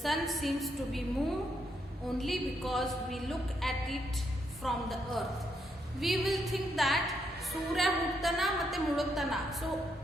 sun seems to be moved only because we look at it from the earth. We will think that Surya huttana matte muduttana. So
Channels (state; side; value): normal; both; correlation 0.77